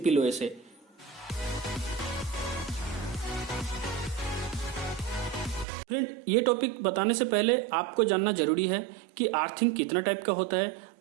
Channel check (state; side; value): drops out; left; at 5.7 s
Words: वे से। फ्रेंड, ये टॉपिक बताने से पहले आपको जानना जरूरी है कि अर्थिंग कितना टाइप का होता है,